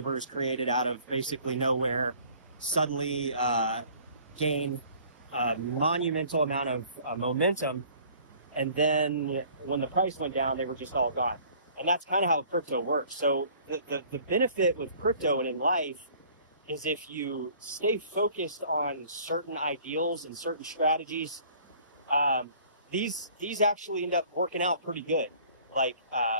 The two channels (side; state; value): both; inverted; correlation -0.53